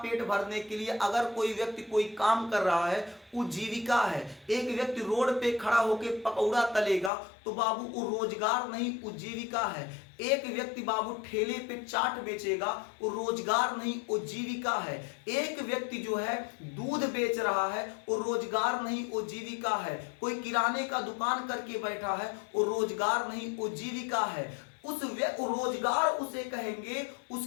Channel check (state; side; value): drops out; right; at 7.1 s